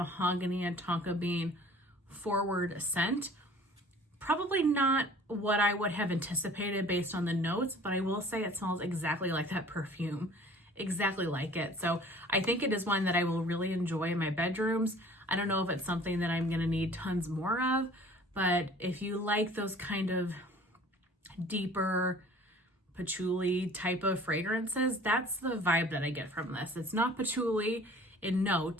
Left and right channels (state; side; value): normal; both; correlation 0.49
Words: and tonka bean forward scent. Probably not what I would have anticipated based on the notes, but I will say it smells exactly like that perfume, exactly like it. So I think it is one that I will really enjoy in my bedrooms. I don't know if it's something that I'm gonna need tons more of, but if you like those kind of deeper patchouli type of fragrances, that's the vibe that I get from this. It's not patchouli in